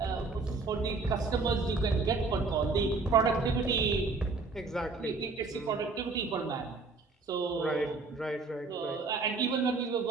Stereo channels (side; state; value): left; quieter; 4.0 dB